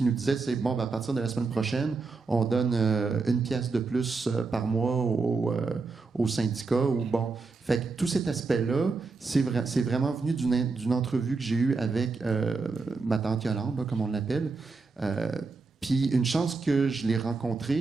nous disaient, c'est bon, à partir de la semaine prochaine, on donne 1 pièce de plus par mois au syndicat. Ou bon. Fait que tout cet aspect-là, c'est vraiment venu d'une entrevue que j'ai eue avec ma tante Yolande, là, comme on l'appelle. Puis une chance que je l'ai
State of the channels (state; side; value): quieter; left; 4.1 dB